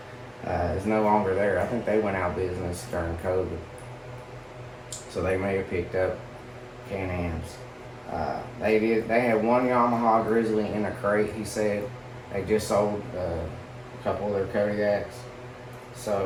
is no longer there. I think they went out of business during COVID, so they may have picked up Can-Ams. They had one Yamaha Grizzly in a crate, he said. They just sold a couple of their Kodiaks.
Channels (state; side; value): identical; both; correlation 1.00